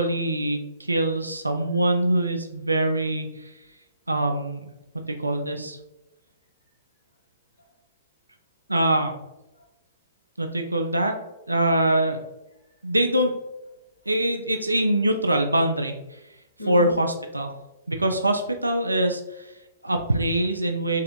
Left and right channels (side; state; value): both; inverted; correlation -0.73